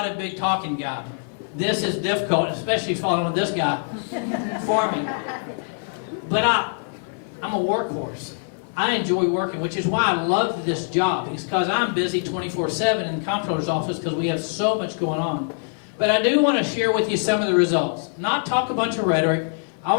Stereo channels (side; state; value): right; silent; 56 dB below the other